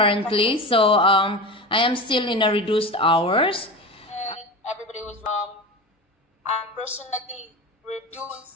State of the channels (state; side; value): normal; both; correlation 0.27